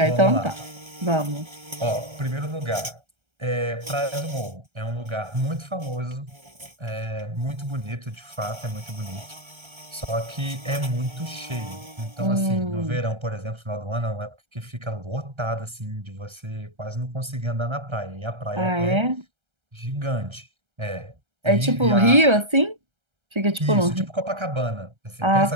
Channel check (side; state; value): left; late; 1.3 ms